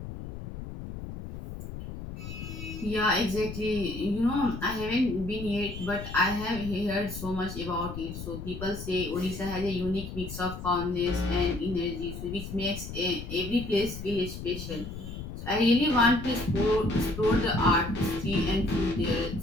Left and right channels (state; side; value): noise; left; rumble, 9 dB below the sound